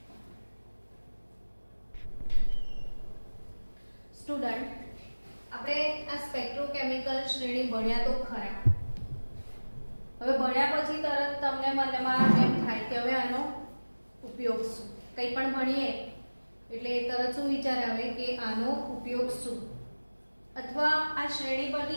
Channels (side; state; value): both; inverted; correlation -1.00